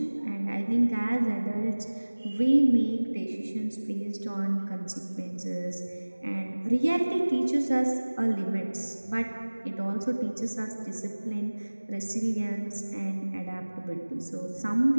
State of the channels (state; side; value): inverted; both; correlation -1.00